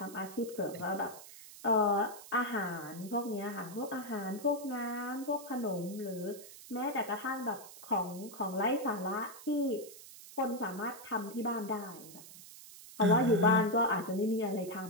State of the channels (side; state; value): right; noise; hiss, 16 dB below the sound